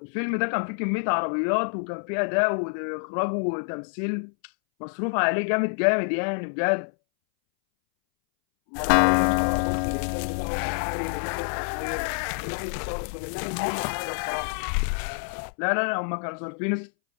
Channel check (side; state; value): right; silent; 60 dB below the other